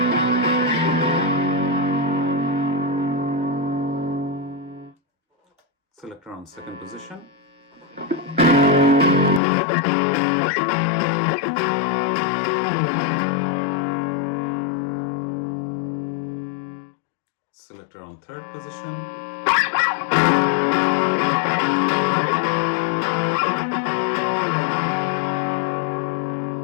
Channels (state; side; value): drops out; right; at 9.4 s